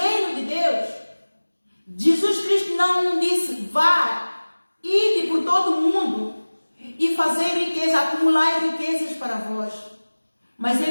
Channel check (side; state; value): both; inverted; correlation -1.00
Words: de Deus, Jesus Cristo não disse, vá, ide por todo o mundo e fazer riqueza, acumular riquezas para vós. Mas